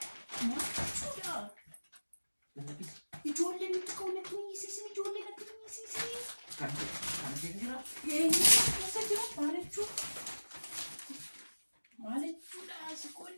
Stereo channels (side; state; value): both; inverted; correlation -1.00